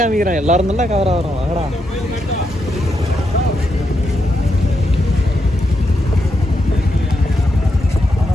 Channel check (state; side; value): normal; both; correlation 0.82